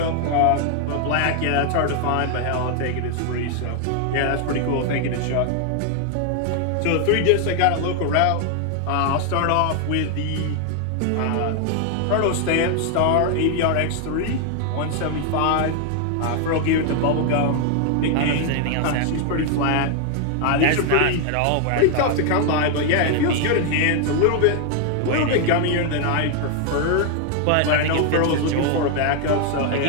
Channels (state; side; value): different; both; correlation 0.00